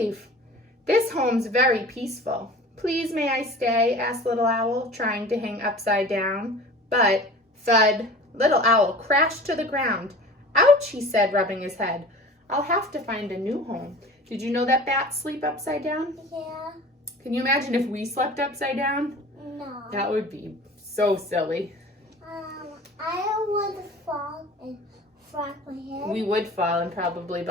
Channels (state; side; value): normal; both; correlation 0.40